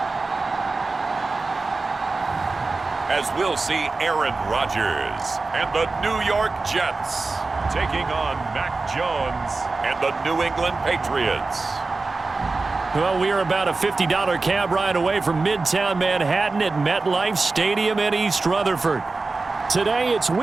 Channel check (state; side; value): quieter; left; 3.7 dB